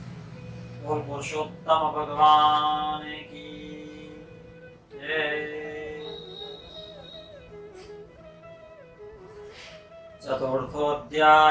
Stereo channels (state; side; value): identical; both; correlation 1.00